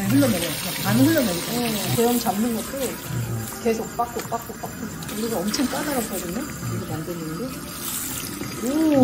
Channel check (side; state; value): both; identical; correlation 1.00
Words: 흘러내려요. 반 흘러내리고. 제형 잡는 것도 계속 빡고. 우리가 엄청 까다롭거든요. 이거 만드는 게.